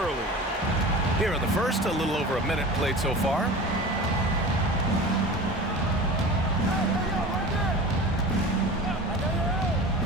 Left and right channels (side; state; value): both; normal; correlation 0.35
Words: Here in the first, a little over a minute played so far.